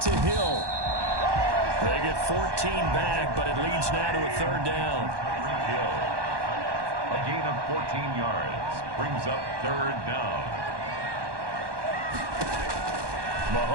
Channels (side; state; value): left; late; 1.2 ms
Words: to Hill. They get 14 back, but it leads now to a 3rd down. Hill. A gain of 14 yards brings up 3rd down.